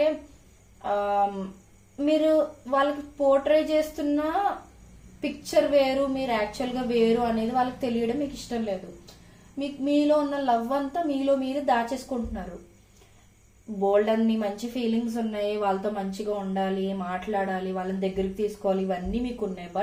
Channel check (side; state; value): both; identical; correlation 1.00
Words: మీరు వాళ్ళకి పోర్ట్రే చేస్తున్న పిక్చర్ వేరు, మీరు యాక్చువల్గా వేరు అనేది వాళ్ళకి తెలియడం మీకు ఇష్టం లేదు. మీలో ఉన్న లవ్ అంతా మీలో మీరు దాచేసుకుంటున్నారు. బోల్డ్ అన్ని మంచి ఫీలింగ్స్ ఉన్నాయి, వాళ్ళతో మంచిగా ఉండాలి, మాట్లాడాలి, వాళ్ళని దగ్గరికి తీసుకోవాలి, ఇవన్నీ మీకు ఉన్నాయి.